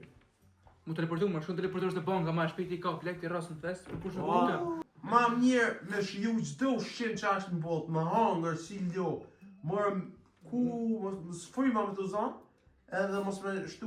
Mu teleportu, më shkon teleportosh në banka, ma shpejt i ka plek të rras në fest, për kush në Oh. banka. Ma mirë me shiju çdo ushqim që është në botë, me hangër, si lo, morëm ku, mos fryma me të zonë, edhe mos me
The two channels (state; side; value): identical; both; correlation 1.00